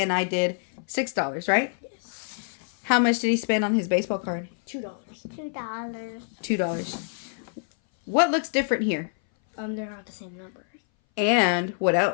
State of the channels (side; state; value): right; silent; 59 dB below the other